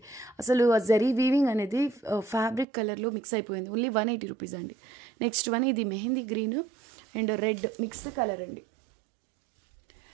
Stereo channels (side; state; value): left; drops out; at 2.7 s